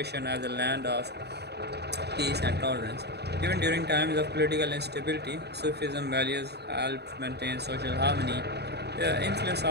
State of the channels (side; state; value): left; late; 0.48 ms